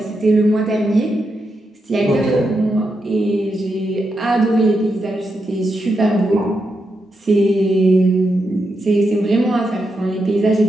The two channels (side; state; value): both; normal; correlation 0.85